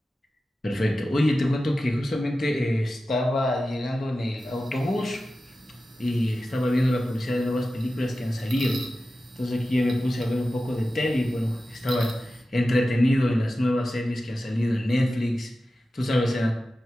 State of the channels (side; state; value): both; normal; correlation 0.94